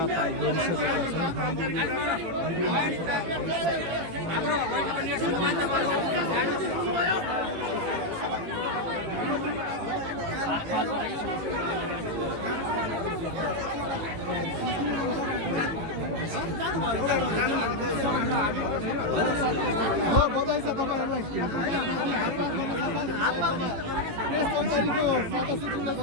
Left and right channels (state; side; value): late; left; 18 ms